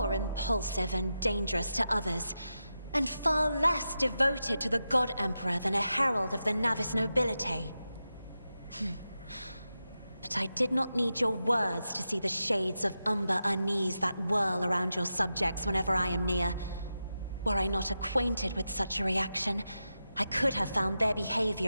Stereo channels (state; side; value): inverted; both; correlation -0.90